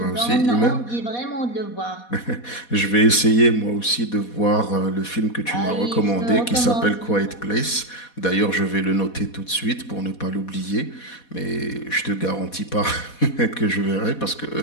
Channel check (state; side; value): late; right; 4.2 ms